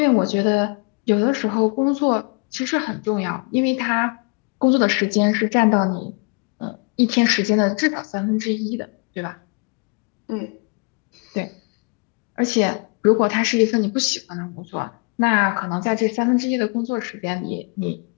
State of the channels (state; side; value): quieter; right; 33.8 dB